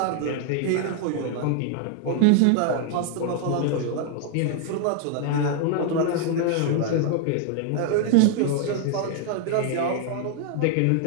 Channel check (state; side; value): different; both; correlation 0.00